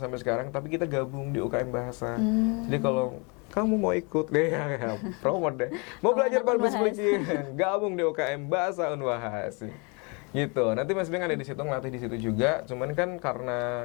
sekarang, tapi kita gabung di UKM Bahasa. Jadi kalau kamu mau ikut deh, ya, promote deh. Mau belajar public speaking, gabung di UKM Bahasa Unwahas. Gitu. Nanti Mas Ibeng ada di situ, ngelatih di situ juga. Cuman kan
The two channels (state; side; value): quieter; right; 32.0 dB